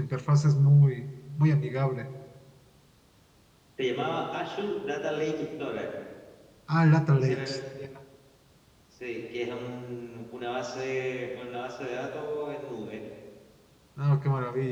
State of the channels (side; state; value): both; identical; correlation 1.00